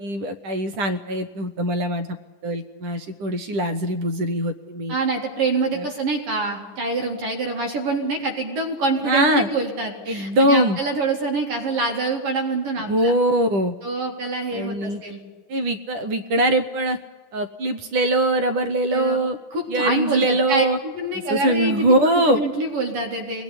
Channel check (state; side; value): late; left; 10 ms